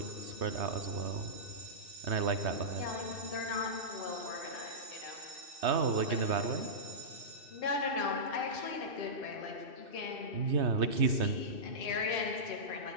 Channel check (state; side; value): late; left; 2.6 ms